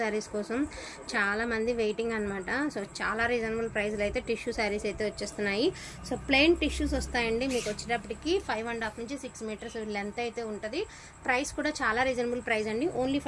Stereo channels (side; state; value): both; identical; correlation 1.00